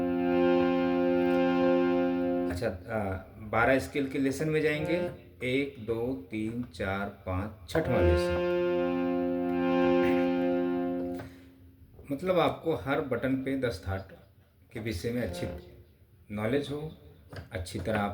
अच्छा, 12 स्केल के लेसन में जाएंगे 1 2 3 4 5, छठवां लेसन। मतलब आपको हर बटन पे 10 थाट के विषय में अच्छी नॉलेज हो, अच्छी तरह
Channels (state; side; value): identical; both; correlation 1.00